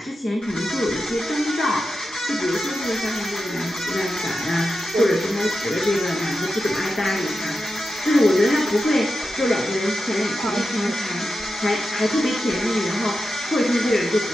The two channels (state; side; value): normal; both; correlation 0.90